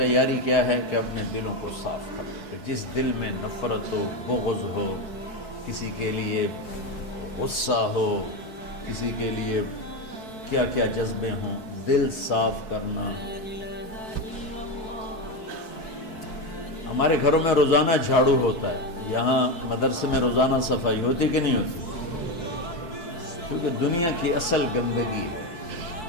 کیا ہے کہ اپنے دلوں کو صاف کر دو۔ جس دل میں نفرت ہو، بغض ہو، کسی کے لیے غصہ ہو، کسی کے لیے کیا کیا جذبے ہوں، دل صاف کرنا۔ ہمارے گھروں میں روزانہ جھاڑو ہوتا ہے، یہاں مدرسے میں روزانہ صفائی ہوتی کہ نہیں ہوتی؟ کیونکہ دنیا کی اصل گندگی ہے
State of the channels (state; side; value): late; right; 4.6 ms